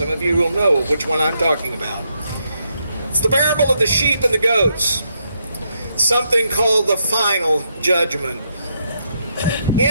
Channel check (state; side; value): inverted; both; correlation -0.78